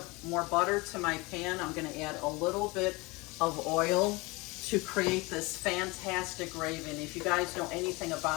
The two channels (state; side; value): quieter; right; 24.6 dB